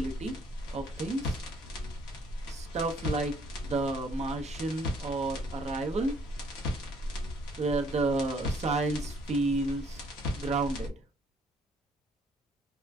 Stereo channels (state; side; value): normal; both; correlation 0.63